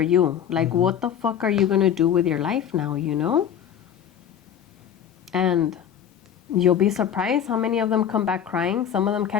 you. Like, what the fuck are you going to do with your life now, you know? And you'll be surprised how many of them come back crying. Some of them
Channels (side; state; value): right; quieter; 9.1 dB